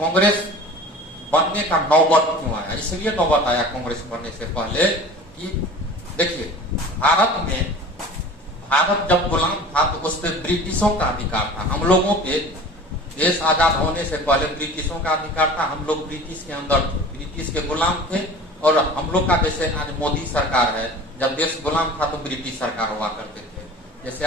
बनने का नौबत क्यों आया। इसलिए नौबत आया कांग्रेस बनने से पहले कि देखिए, भारत जब गुलाम था तो उस पर ब्रिटिशों का अधिकार था। हम लोगों पे देश आजाद होने से पहले ब्रिटिशों का अधिकार था। हम लोग ब्रिटिश के अंदर थे, ब्रिटिश के गुलाम थे। और हम लोग का जैसे आज मोदी सरकार है, जब देश गुलाम था तो ब्रिटिश सरकार हुआ करते थे। जैसे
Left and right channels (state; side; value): normal; both; correlation 0.41